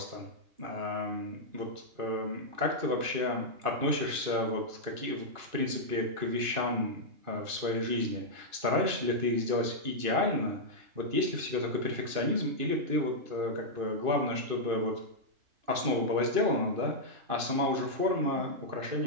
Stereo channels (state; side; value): late; left; 2.5 ms